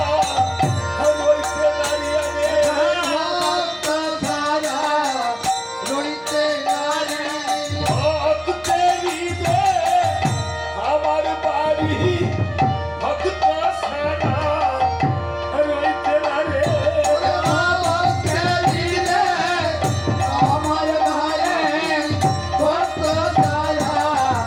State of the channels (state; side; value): identical; both; correlation 1.00